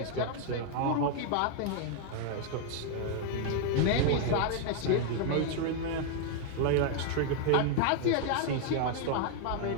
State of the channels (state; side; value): different; both; correlation 0.00